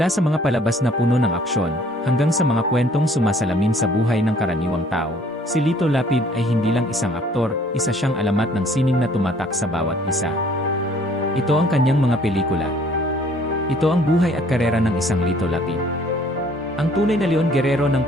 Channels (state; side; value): normal; both; correlation 0.58